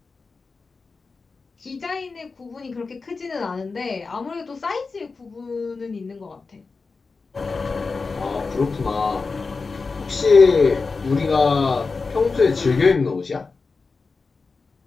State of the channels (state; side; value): quieter; right; 4.3 dB